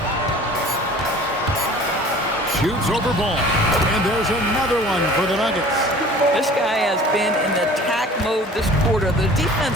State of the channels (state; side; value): normal; both; correlation 0.46